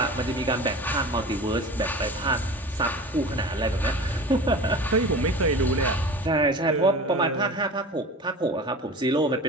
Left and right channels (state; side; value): normal; both; correlation 0.36